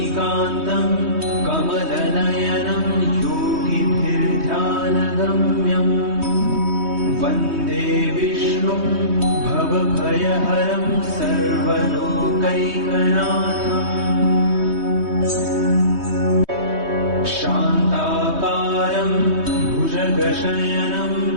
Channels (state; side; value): late; left; 3.2 ms